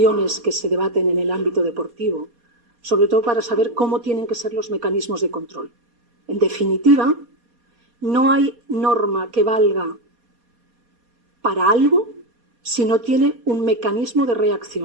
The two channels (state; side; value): late; left; 4.2 ms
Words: que se debaten en el ámbito deportivo, sobre todo para saber cómo tienen que ser los mecanismos de control. En definitiva, no hay norma que valga para algo si no tiene un mecanismo de